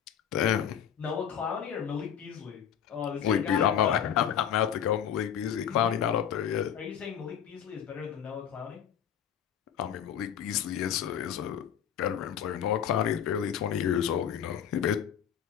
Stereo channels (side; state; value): right; quieter; 9.0 dB